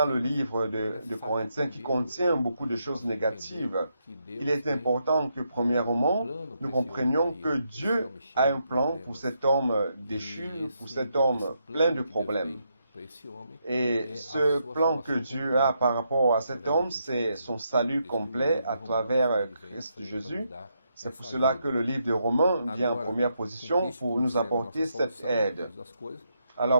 le livre de Corinthiens qui contient beaucoup de choses négatives, il est important que premièrement, nous comprenions que Dieu a un plan pour cet homme déchu, pour cet homme plein de problèmes. Et ce plan que Dieu a par rapport à cet homme, c'est son salut complet à travers Christ Jésus. C'est pour cela que le livre de Romains vient en première position pour nous apporter cette aide. Alors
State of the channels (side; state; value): both; inverted; correlation -0.80